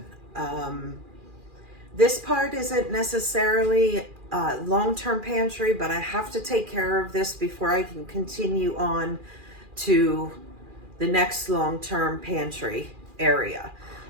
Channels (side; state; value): left; late; 2.4 ms